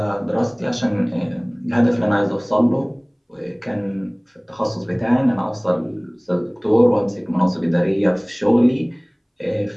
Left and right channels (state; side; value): identical; both; correlation 1.00